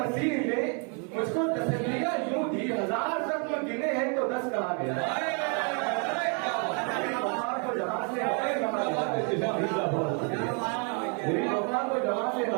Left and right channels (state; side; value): quieter; left; 38.4 dB